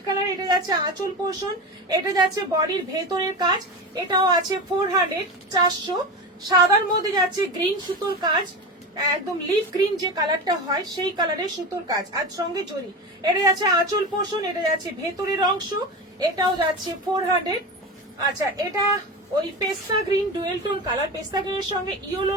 colour. এটা যাচ্ছে আঁচল পোর্শন, এটা যাচ্ছে বডির ভেতরের কাজ। এটাও আছে 400। সাদার মধ্যে যাচ্ছে গ্রিন সুতোর কাজ, একদম লিফ গ্রিন যে কালারটা হয় সেই কালারের সুতোর কাজ, আর সঙ্গে জরি। এটা যাচ্ছে আঁচল পোর্শন, এটা যাচ্ছে ভেতরের অংশ। এটাও যাচ্ছে 400। আচ্ছা, এটা ওই পেস্তা গ্রিন ডুয়েল টোন কালার, পেস্তা গ্রিনের সঙ্গে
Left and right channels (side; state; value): both; normal; correlation 0.24